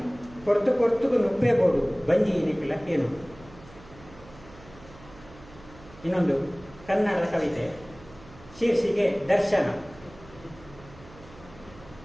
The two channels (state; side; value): noise; right; hum, 21 dB below the sound